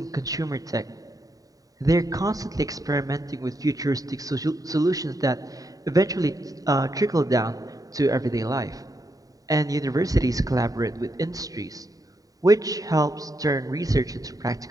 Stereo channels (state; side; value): late; left; 0.18 ms